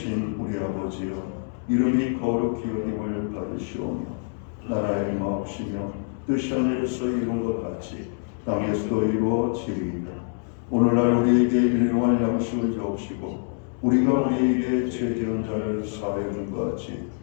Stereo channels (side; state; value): right; silent; 59 dB below the other